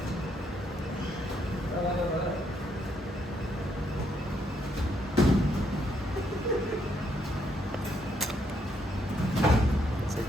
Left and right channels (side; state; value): both; normal; correlation 0.74